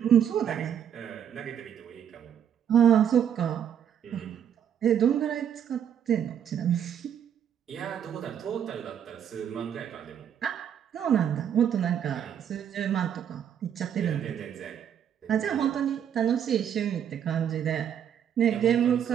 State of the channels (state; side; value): quieter; left; 9.0 dB